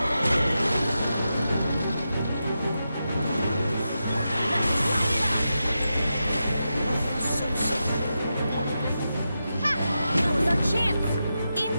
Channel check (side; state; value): both; inverted; correlation -0.89